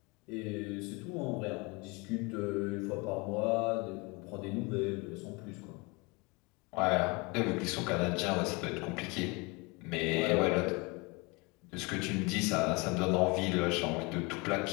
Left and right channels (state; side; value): quieter; right; 27.6 dB